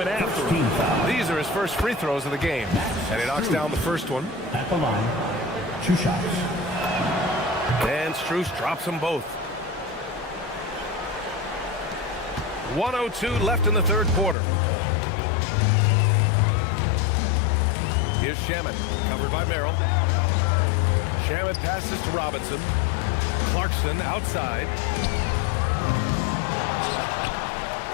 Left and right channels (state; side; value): drops out; right; at 14.4 s